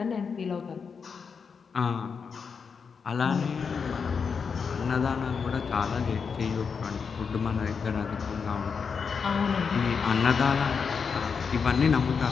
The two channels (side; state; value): right; quieter; 5.8 dB